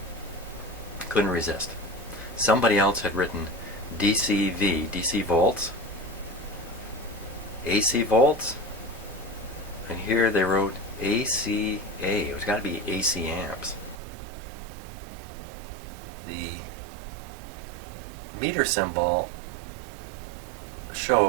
Couldn't resist. Somebody else had written DC volts AC volts, and here they wrote ACA. It's got to be AC amps. The meter symbol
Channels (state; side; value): drops out; left; at 14.0 s